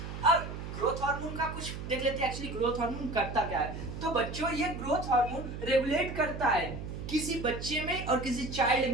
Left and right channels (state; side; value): noise; right; hum, 8 dB below the sound